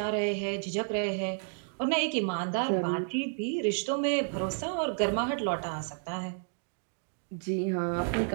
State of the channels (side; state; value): left; silent; 57 dB below the other